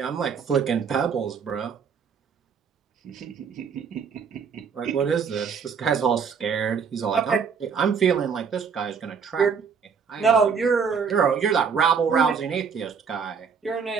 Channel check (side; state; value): left; quieter; 6.3 dB